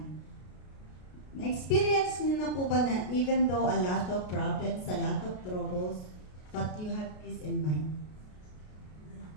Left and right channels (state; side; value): late; right; 33 ms